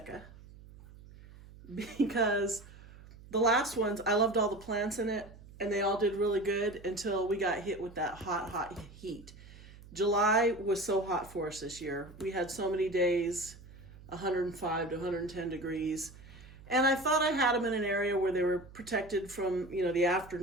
because the last ones, I loved all the plants in it and they all did really good until we got hit with that hot heat. July was so hot for us this year. We had so many days, 105 to 110 degrees. And I thought I had them in an area where they were protected from, the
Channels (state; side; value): noise; right; hum, 19 dB below the sound